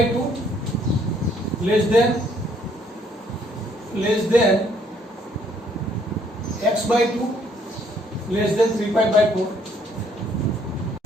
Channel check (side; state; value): both; normal; correlation 0.66